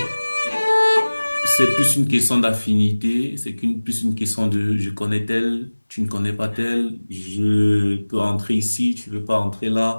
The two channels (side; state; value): both; inverted; correlation -1.00